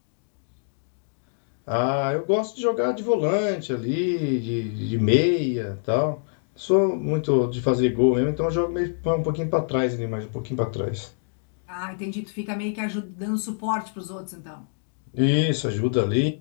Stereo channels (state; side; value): silent; right; digital silence